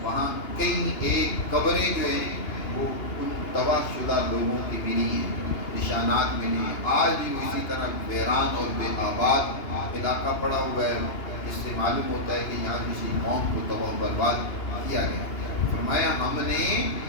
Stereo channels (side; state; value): right; late; 2.9 ms